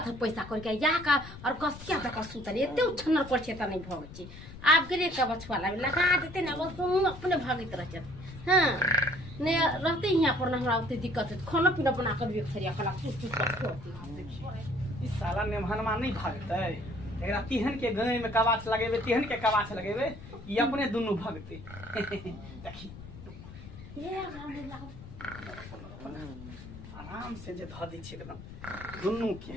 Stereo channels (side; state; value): left; noise; rumble, 14 dB below the sound